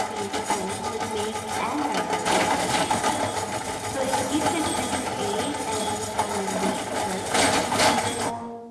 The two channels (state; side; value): identical; both; correlation 1.00